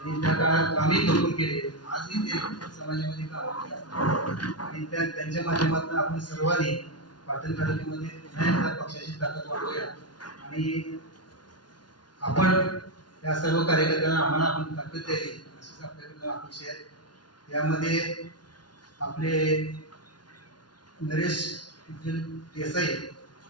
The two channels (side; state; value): right; late; 0.70 ms